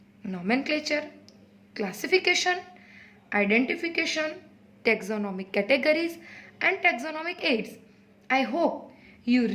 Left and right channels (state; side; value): identical; both; correlation 1.00